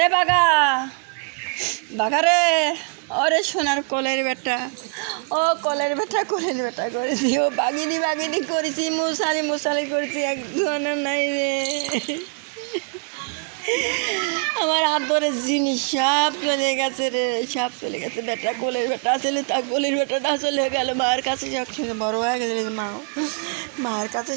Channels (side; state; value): left; quieter; 39.4 dB